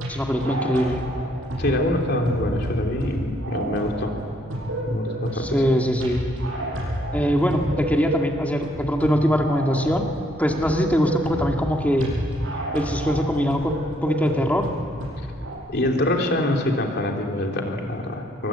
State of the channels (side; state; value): both; normal; correlation 0.69